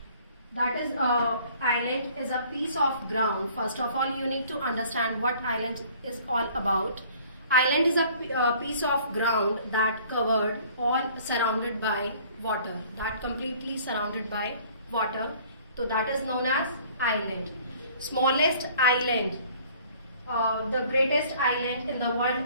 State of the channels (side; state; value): both; inverted; correlation -0.54